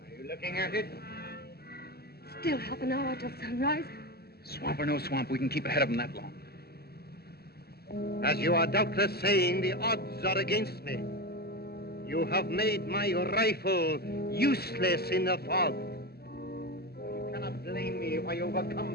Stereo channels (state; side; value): late; right; 0.46 ms